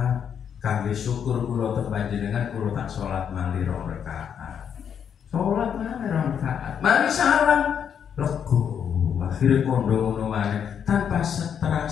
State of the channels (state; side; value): quieter; right; 8.0 dB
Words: Kangge syukur kula teng panjenengan kula tak salat malih 2 rakaat. Salat malih 2 rakaat. Mari salam lego. Akhirnya kondo ngono maneh tanpa